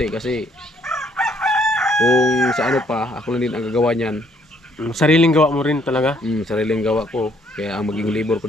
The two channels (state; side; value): normal; both; correlation 0.67